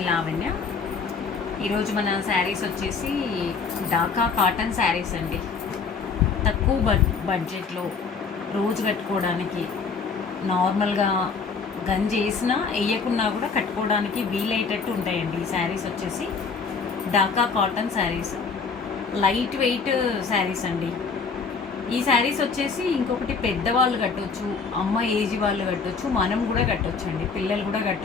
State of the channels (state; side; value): quieter; right; 5.1 dB